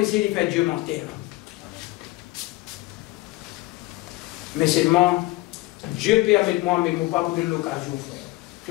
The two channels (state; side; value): quieter; right; 20.1 dB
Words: de faire Dieu mentir. Mais seulement, Dieu permet moi, mais il ne m'a pas donné l'occasion, frère.